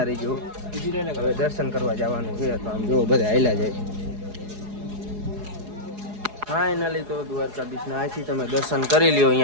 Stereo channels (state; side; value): late; left; 4.8 ms